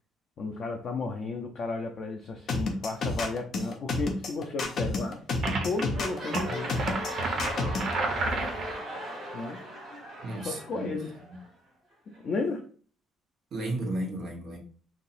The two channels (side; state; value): both; normal; correlation 0.70